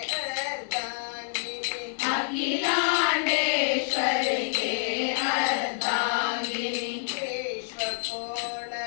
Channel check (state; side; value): silent; right; digital silence